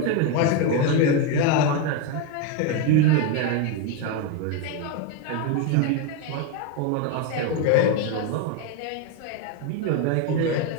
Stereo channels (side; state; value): both; different; correlation 0.02